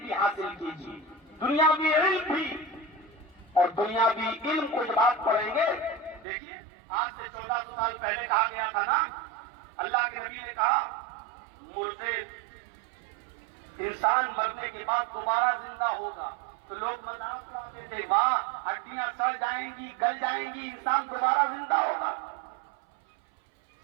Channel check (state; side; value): drops out; left; at 6.2 s